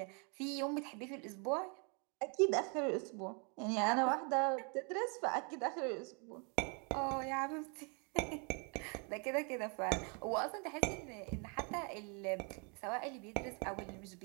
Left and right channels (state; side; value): quieter; left; 35.7 dB